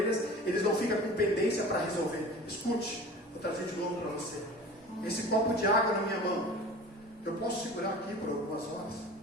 eles não ficam com pendência para resolver. Escute, vou trazer de novo para você. Esse copo de água na minha mão, eu posso segurar aqui por algumas horas,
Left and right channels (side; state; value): both; normal; correlation 0.39